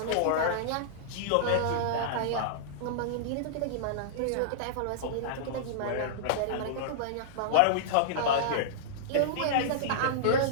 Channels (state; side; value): different; both; correlation -0.02